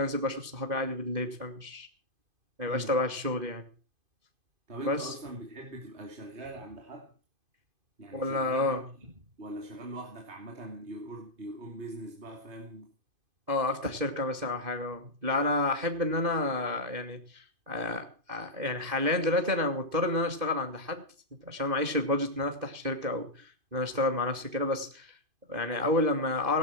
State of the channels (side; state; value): left; late; 2.5 ms